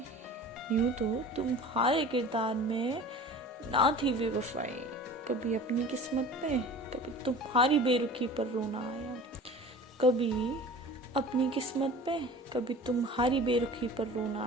यूं तो तुम्हारे किरदार में ना थी बेवफाई। कभी अपनी किस्मत पे, कभी तुम्हारी बेरुखी पर रोना आया। कभी अपनी किस्मत पे, कभी तुम्हारी बेरुखी पर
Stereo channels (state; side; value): normal; both; correlation 0.40